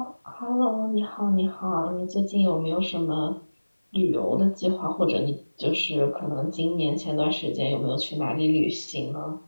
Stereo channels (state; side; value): inverted; both; correlation -1.00